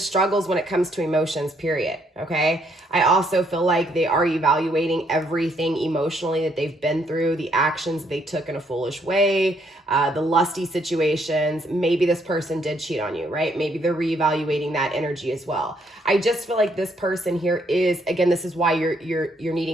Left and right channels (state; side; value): normal; both; correlation 0.71